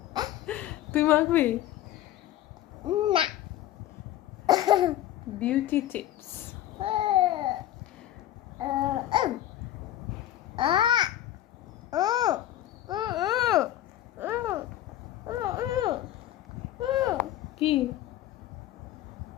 তুই মাখবি? না। Beauty tips. কি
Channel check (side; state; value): right; quieter; 13.1 dB